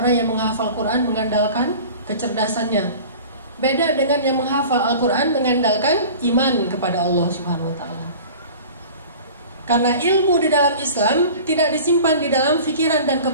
yang menghafal Quran mengandalkan kecerdasannya. Beda dengan yang menghafal Al-Quran mengandalkan iman kepada Allah Subhanahu wa ta'ala. Karena ilmu di dalam Islam tidak disimpan di dalam pikiran dan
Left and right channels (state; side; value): inverted; both; correlation -0.41